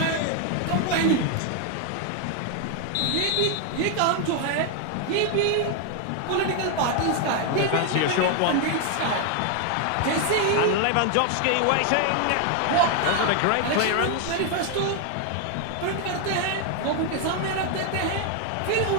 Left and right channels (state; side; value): different; both; correlation 0.00